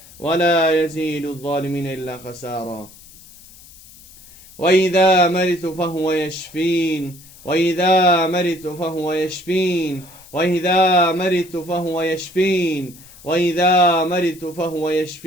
ولا يزيد الظالمين إلا خسارا. وإذا مرضت فهو يشفين، وإذا مرضت فهو يشفين، وإذا مرضت فهو يشفين، وإذا مرضت فهو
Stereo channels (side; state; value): left; noise; hiss, 22 dB below the sound